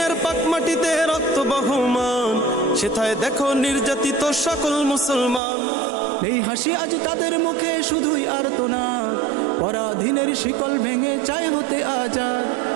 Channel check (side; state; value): left; drops out; at 5.4 s